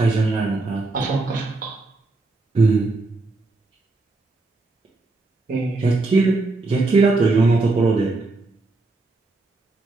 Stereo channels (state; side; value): quieter; left; 3.3 dB